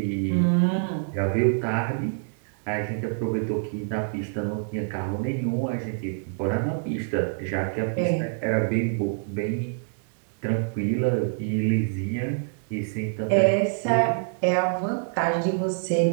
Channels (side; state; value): left; silent; digital silence